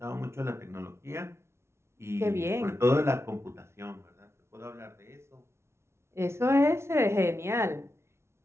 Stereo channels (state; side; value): late; left; 0.13 ms